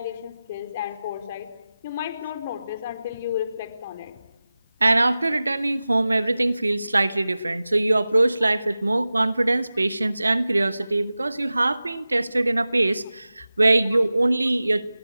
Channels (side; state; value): both; inverted; correlation -0.96